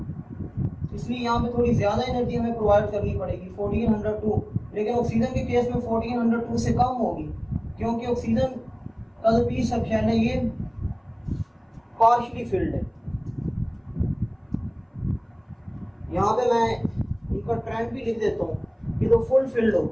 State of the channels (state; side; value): identical; both; correlation 1.00